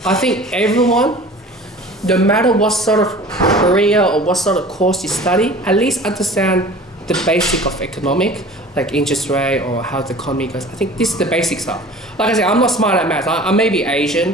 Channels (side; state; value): both; normal; correlation 0.43